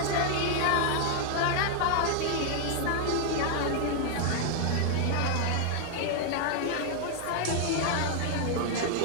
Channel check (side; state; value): both; different; correlation 0.00